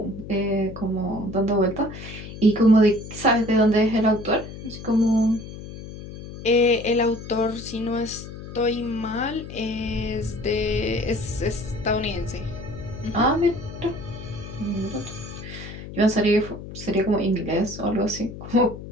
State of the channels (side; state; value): left; noise; hum, 12 dB below the sound